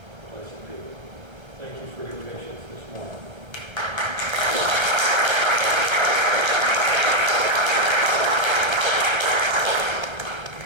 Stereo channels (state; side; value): late; left; 1.3 ms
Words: Blessed be. Thank you for your patience.